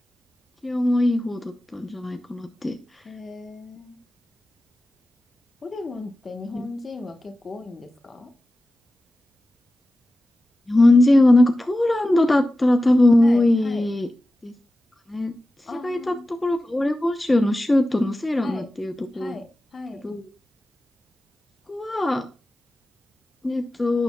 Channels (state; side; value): normal; both; correlation 0.94